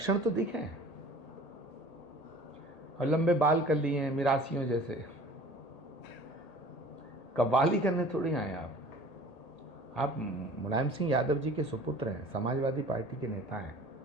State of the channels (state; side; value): late; right; 1.8 ms